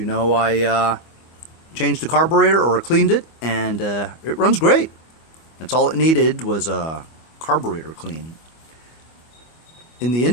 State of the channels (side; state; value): right; late; 25 ms